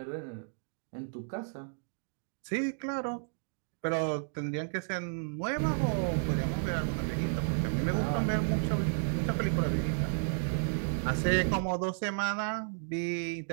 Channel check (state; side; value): silent; left; digital silence